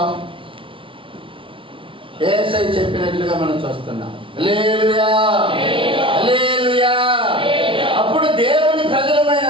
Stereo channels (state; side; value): late; left; 0.25 ms